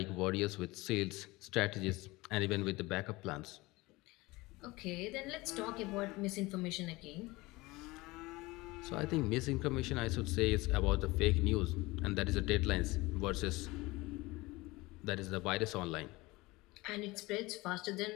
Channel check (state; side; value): quieter; right; 21.7 dB